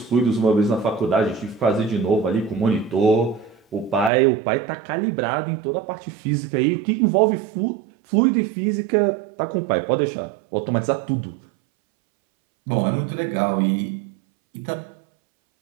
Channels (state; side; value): drops out; left; at 4.1 s